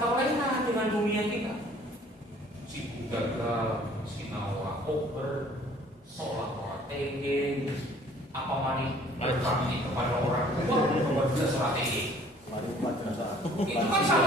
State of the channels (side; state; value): both; normal; correlation 0.55